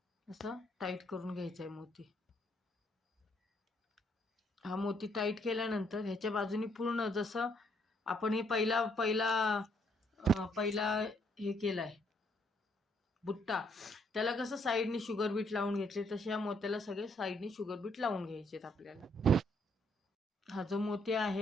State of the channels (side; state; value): both; normal; correlation 0.70